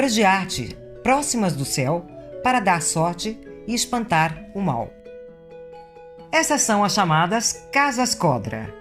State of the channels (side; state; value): both; identical; correlation 1.00